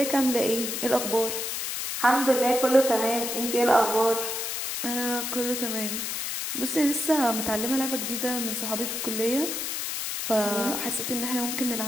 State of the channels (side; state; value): left; noise; hiss, 3 dB below the sound